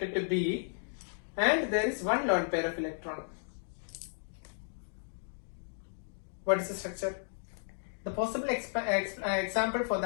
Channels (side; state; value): right; silent; digital silence